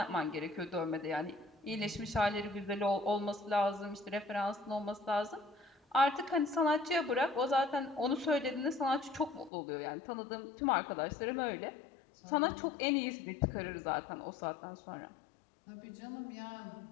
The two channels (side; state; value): right; drops out; at 9.5 s